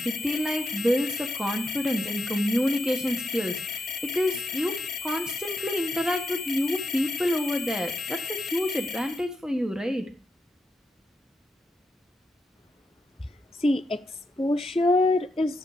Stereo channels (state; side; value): normal; both; correlation 0.84